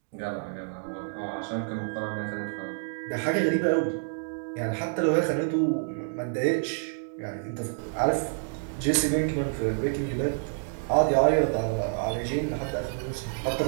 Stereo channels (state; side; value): silent; left; digital silence